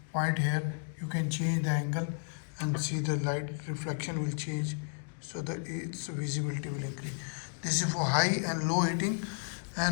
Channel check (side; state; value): right; silent; digital silence